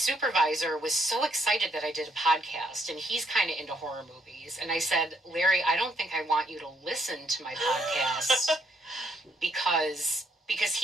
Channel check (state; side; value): normal; both; correlation 0.72